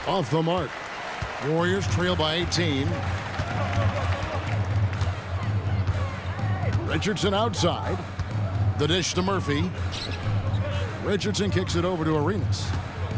off the mark. Warriors trail by 18. Richardson outside. The dish to Murphy. Richardson kicks it over to Arenas.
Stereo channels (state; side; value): identical; both; correlation 1.00